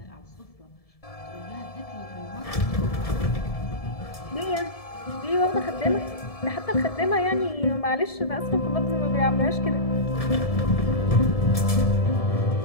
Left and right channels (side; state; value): right; late; 1.7 ms